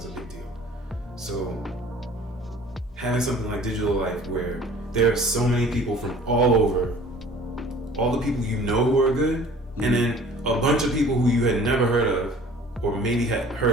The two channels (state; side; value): normal; both; correlation 0.49